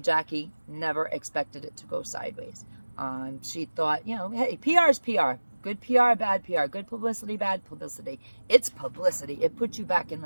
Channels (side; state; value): both; inverted; correlation -1.00